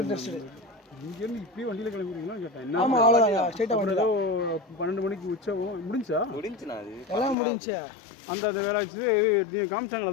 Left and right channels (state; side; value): drops out; right; at 7.4 s